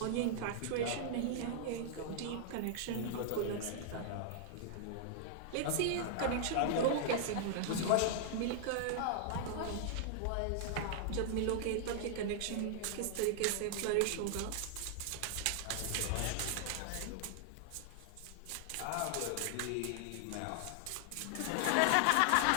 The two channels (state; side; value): different; both; correlation -0.01